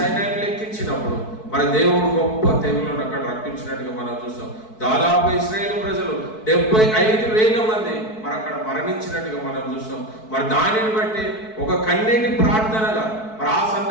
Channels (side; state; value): right; late; 4.6 ms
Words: లెక్కించినప్పుడు మరి దేవుడు గొప్ప తెగులను అక్కడ రప్పించినట్టుగా మనం చూస్తాం. దాదాపు ఇశ్రాయేలు ప్రజలు 75,000 మంది మరి అక్కడ మరణించినట్టుగా మనం చూస్తాం. మరి దానిని బట్టి ఒక కన్నీటి ప్రార్థనగా మరి ఆ